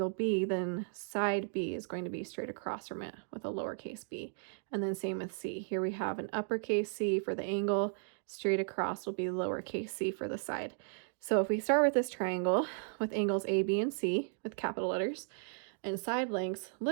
B, then side B is going to be straight across from it with a lowercase b. And then same with C. Here we have an uppercase C for the angle, straight across will be lowercase c for the side. So if we start with this triangle with angles A, B, and C with capital letters, and side lengths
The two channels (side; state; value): left; silent; digital silence